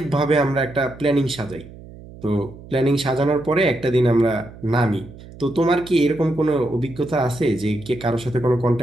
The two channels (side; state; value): right; noise; hum, 18 dB below the sound